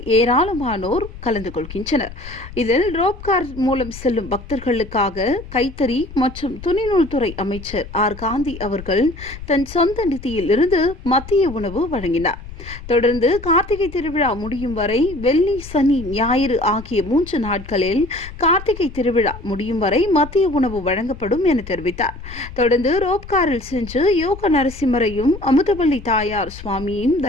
ஏராளமானோர் கலந்து கொள்கின்றனர். இதில் ரோப்கார் மூலம் செல்லும் பக்தர்களுக்காக கைத்தறி மற்றும் துணிநூல் துறை அமைச்சர் ஆர் காந்தி அவர்கள் தன் சொந்த நிதியில் இருந்து மதிய உணவு வழங்கினார். தொடர்ந்து கார்த்திகை திருவிழா முடியும் வரை வெள்ளி, சனி, ஞாயிறு ஆகிய 3 நாட்களில் கார்த்திகை திருவிழா முடியும் வரை மதிய உணவு வழங்கப்படும் என தெரிவித்தார். தொடர்ந்து ரோப்காரில் சென்று யோக நரசிம்மரையும் அமுதவள்ளி தாயார் சுவாமியையும்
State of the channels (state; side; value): noise; left; rumble, 14 dB below the sound